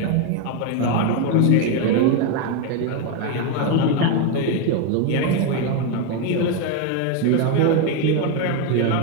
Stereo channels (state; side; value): different; both; correlation 0.02